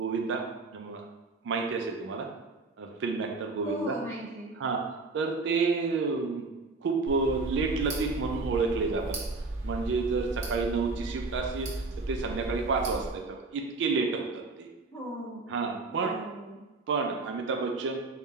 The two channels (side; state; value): left; quieter; 3.7 dB